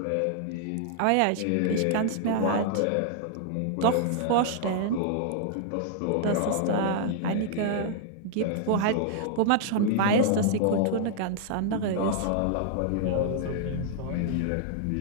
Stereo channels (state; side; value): different; both; correlation -0.01